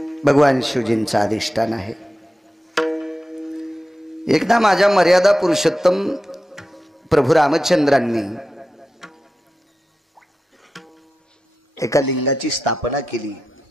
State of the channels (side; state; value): both; normal; correlation 0.91